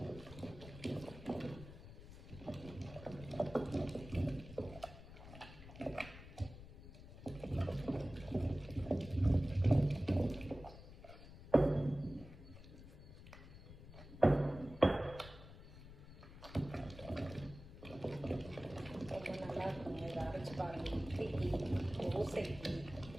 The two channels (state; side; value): noise; left; rumble, 15 dB below the sound